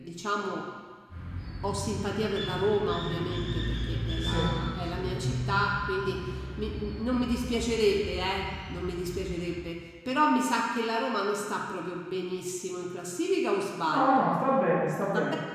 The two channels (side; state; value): both; identical; correlation 1.00